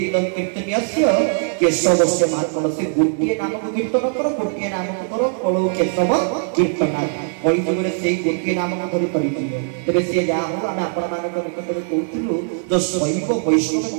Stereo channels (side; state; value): left; silent; digital silence